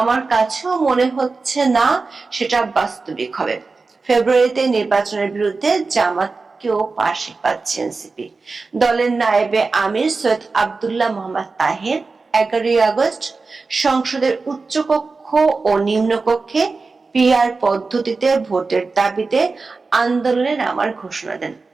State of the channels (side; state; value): left; quieter; 4.1 dB